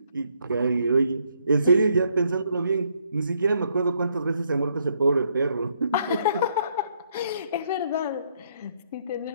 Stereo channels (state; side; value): inverted; both; correlation -0.71